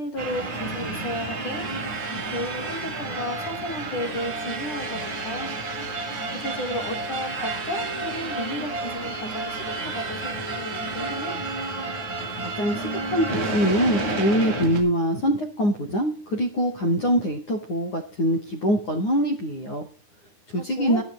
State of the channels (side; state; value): right; late; 9.8 ms